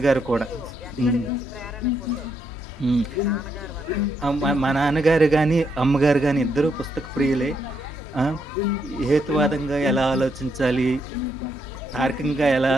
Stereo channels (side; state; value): left; noise; hum, 15 dB below the sound